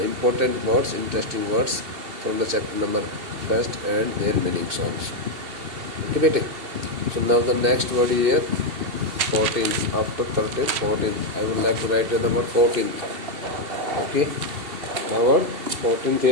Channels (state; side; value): late; left; 2.7 ms